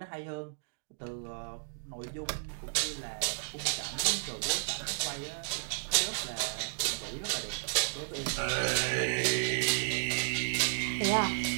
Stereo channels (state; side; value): silent; left; digital silence